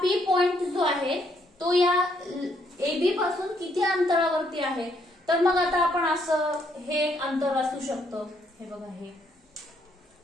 P पॉइंट जो आहे तो या AB पासून किती अंतरावरती आहे, तर मग आता आपण असं हे एक अंतर असू शकतं, हे बघा हे,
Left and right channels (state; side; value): normal; both; correlation 0.71